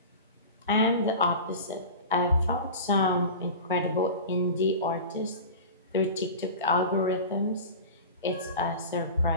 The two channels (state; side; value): inverted; both; correlation -0.32